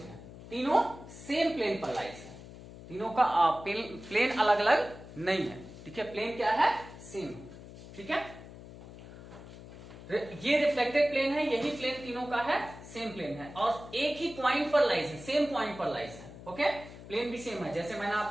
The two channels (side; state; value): left; noise; hum, 15 dB below the sound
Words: तीनों सेम प्लेन पर लाइज है। तीनों का प्लेन अलग अलग नहीं है, ठीक है, प्लेन क्या है, सेम, ठीक है। ये रिफ्लेक्टेड प्लेन है, यही प्लेन तीनों का है, सेम प्लेन है, और एक ही पॉइंट पर लाइज है, सेम पॉइंट पर लाइज है। ओके, प्लेन भी सेम है। जैसे